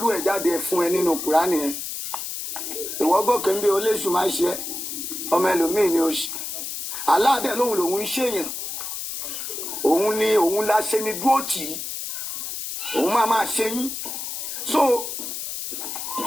ẹ̀ jáde fún ẹ nínú Kùránì yẹn ìwọ gòkè ń bí oléṣù máa ṣe ọmọ ẹlòmíì ni ó ṣe aláàdẹ lòun lòun ń ṣèyàn òun ni òun la ṣe ni dúró tì í òun máa ṣe yín so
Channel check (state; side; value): noise; left; hiss, 6 dB below the sound